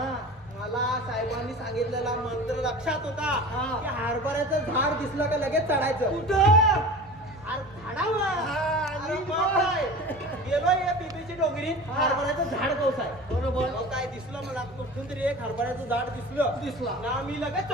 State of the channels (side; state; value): both; normal; correlation 0.36